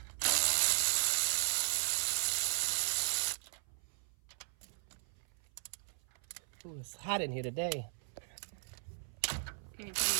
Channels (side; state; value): left; silent; 53 dB below the other